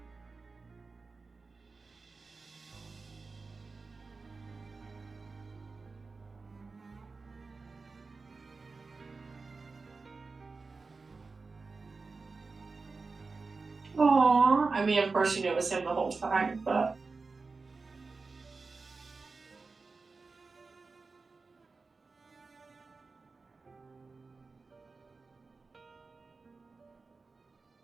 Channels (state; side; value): quieter; left; 4.1 dB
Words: Aww. I mean, of course you knew it was him the whole time, but...